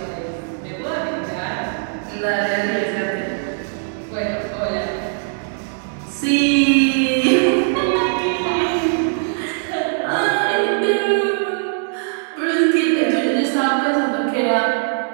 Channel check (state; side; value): silent; left; digital silence